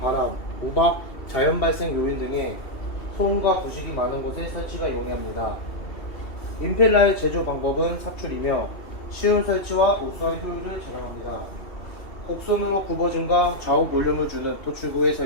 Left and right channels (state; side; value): late; right; 2.7 ms